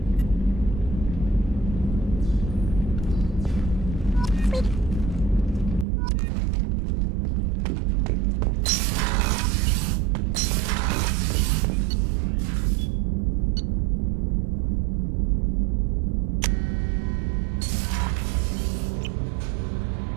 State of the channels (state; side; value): drops out; left; at 5.9 s